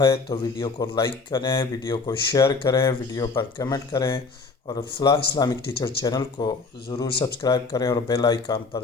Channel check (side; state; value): right; quieter; 4.2 dB